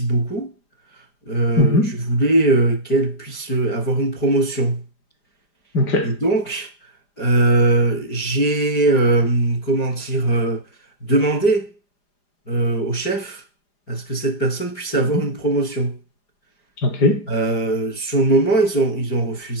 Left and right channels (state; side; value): late; right; 5.0 ms